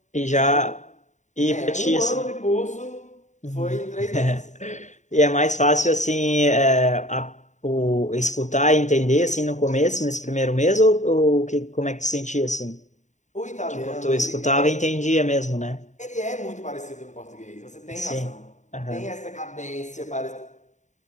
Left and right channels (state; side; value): late; right; 0.35 ms